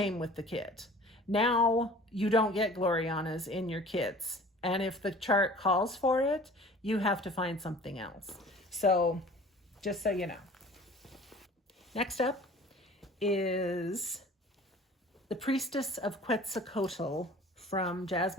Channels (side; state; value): both; normal; correlation 0.46